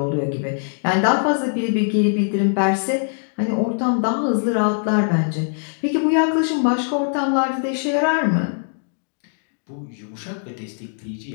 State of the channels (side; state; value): right; silent; digital silence